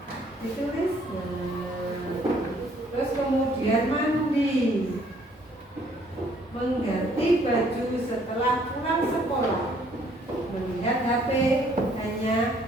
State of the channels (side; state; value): both; normal; correlation 0.63